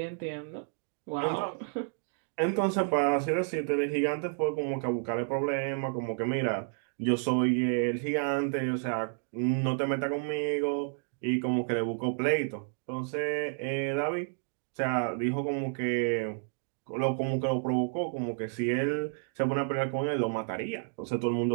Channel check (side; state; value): left; silent; 57 dB below the other